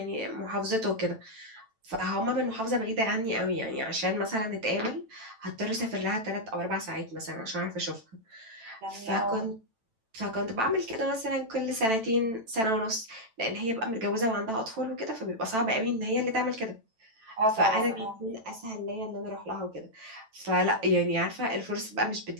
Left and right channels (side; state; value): left; late; 9.0 ms